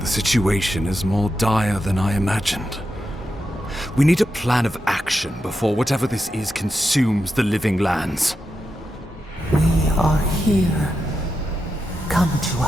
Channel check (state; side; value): normal; both; correlation 0.87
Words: The situation is more dire than I imagined. We need a plan of action before whatever this is consumes the living lands. We are here. Come to